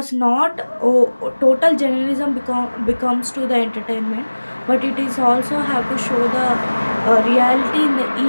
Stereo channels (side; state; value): both; inverted; correlation -1.00